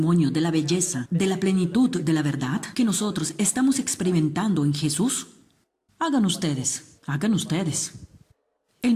de la belleza, de la plenitud de la verdad que nosotros estamos experimentando en Jesús, hagan ustedes. Él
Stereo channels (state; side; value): identical; both; correlation 1.00